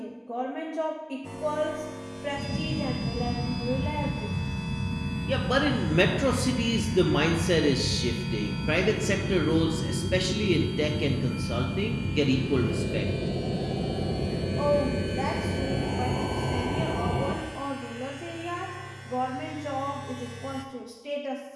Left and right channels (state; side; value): identical; both; correlation 1.00